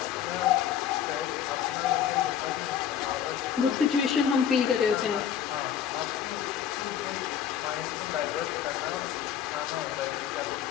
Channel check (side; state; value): right; quieter; 9.1 dB